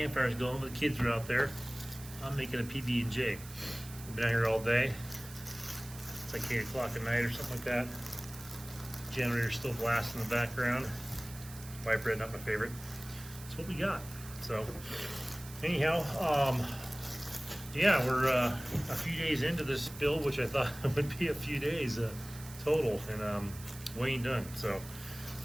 going, but the kids are out there. I'm making a PB&J. I've been out here all day. It's like 8 o'clock at night or something like that. Generator's still blasting in the background. White bread, not my favorite. That's what we got. So, anyhow, yeah, we're a few days into this build, which I thought would be a few days total, and we ain't done. So,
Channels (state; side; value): noise; right; hiss, 16 dB below the sound